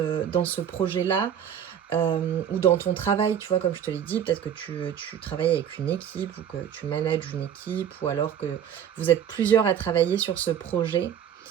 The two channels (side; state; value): left; quieter; 9.0 dB